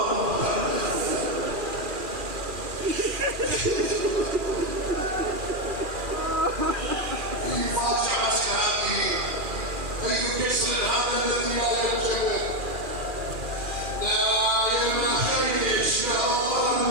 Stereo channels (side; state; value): left; late; 2.4 ms